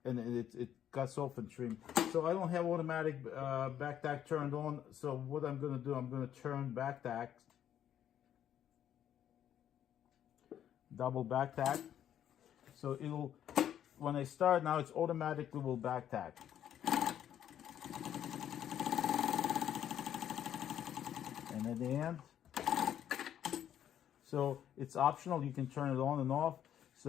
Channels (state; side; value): quieter; right; 10.3 dB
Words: and it cuts off and trim. So I don't have automatic back-tack turned on. So what I'm going to do, I'm going to turn back-tack, double back-tack. So it'll, when I start now, it's automatically will back-tack. And at the end, so it's optional, you can turn it on and off.